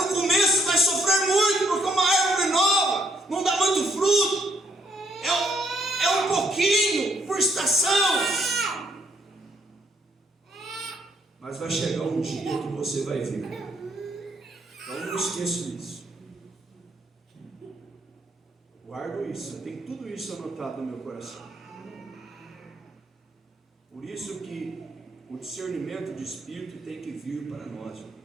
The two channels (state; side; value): normal; both; correlation 0.71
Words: começo vai sofrer muito, porque é uma árvore nova, não dá muito fruto. É um pouquinho por estação. Mas vai chegar um dia que você vai ver. Então não esqueça disso. Guardo isso, eu tenho tudo isso anotado no meu coração. Por isso que o discernimento de espírito tem que vir para nós,